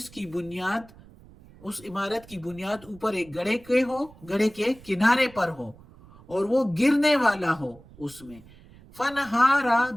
کی بنیاد، اس عمارت کی بنیاد اوپر ایک گڑھے کے ہو، گڑھے کے کنارے پر ہو اور وہ گرنے والا ہو اس میں. فنہارا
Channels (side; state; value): right; noise; rumble, 23 dB below the sound